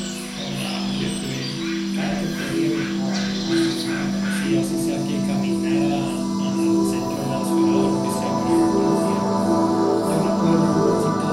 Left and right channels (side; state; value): both; identical; correlation 1.00